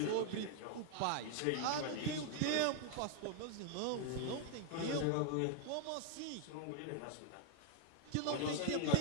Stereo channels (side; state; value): both; different; correlation 0.00